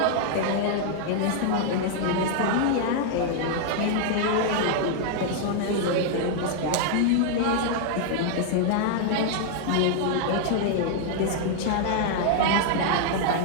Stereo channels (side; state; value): both; different; correlation 0.00